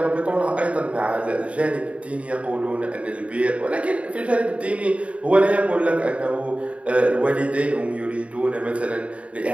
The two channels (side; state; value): left; late; 0.064 ms